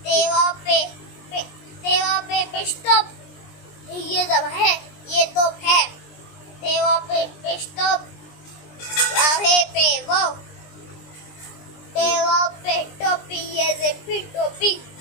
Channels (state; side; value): late; right; 20 ms